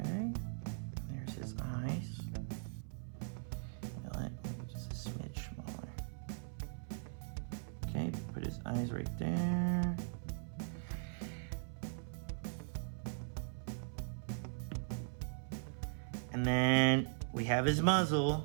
There's his eyes. Maybe just a smidge smaller. Okay, put his eyes right there. And then we have his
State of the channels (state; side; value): silent; left; 51 dB below the other